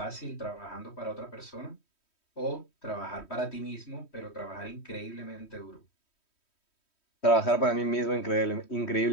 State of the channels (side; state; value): right; late; 3.1 ms